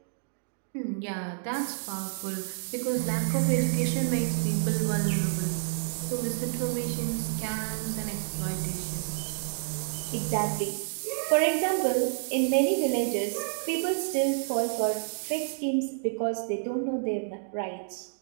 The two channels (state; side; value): silent; left; digital silence